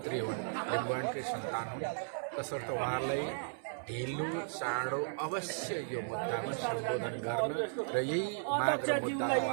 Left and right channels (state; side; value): silent; left; 54 dB below the other